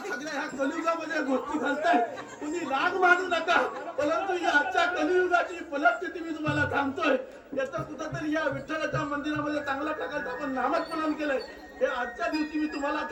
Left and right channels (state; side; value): identical; both; correlation 1.00